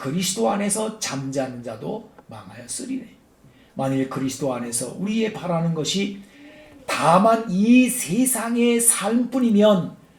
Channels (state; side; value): identical; both; correlation 1.00